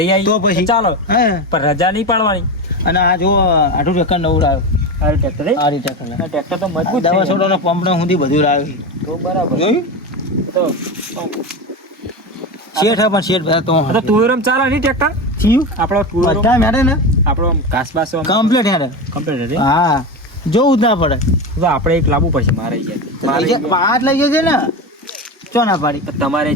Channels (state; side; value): normal; both; correlation 0.21